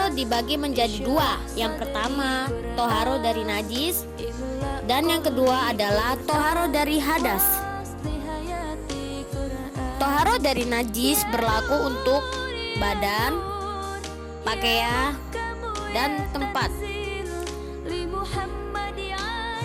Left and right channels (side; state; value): both; identical; correlation 1.00